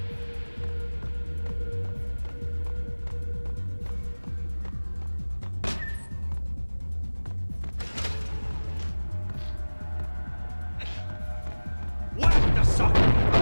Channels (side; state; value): both; inverted; correlation -1.00